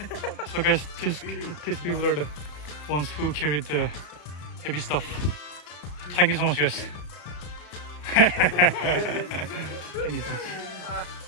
So guys, these people are the ones who carried the heavy stuff. Thank you so much, guys. Thank you so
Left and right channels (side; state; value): right; late; 33 ms